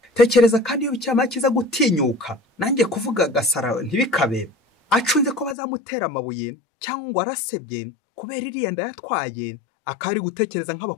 Tekereza kandi iyo Bikira Mariya akiza gutinyuka, nanjye kuvuga gasara ntibikabe, acunze ko bazamutera amabuye cyangwa ngo arasebye kubera iriya nda yatwaye, akari gutekereza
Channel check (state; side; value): drops out; right; at 5.6 s